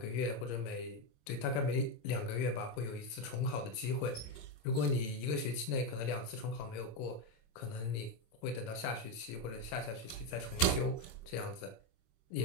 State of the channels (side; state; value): right; late; 26 ms